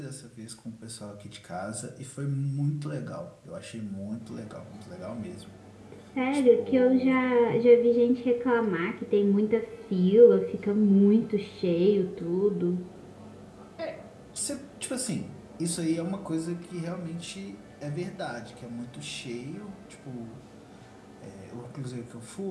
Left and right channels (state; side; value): identical; both; correlation 1.00